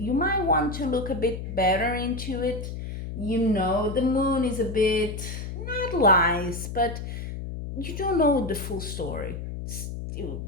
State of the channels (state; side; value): noise; left; hum, 7 dB below the sound